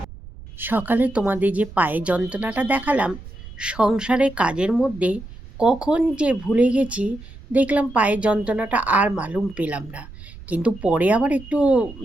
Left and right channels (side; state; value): right; noise; rumble, 16 dB below the sound